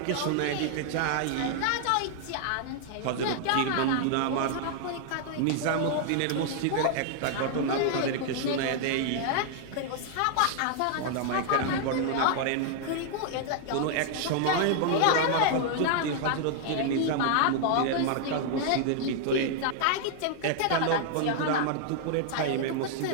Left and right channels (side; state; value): both; different; correlation 0.00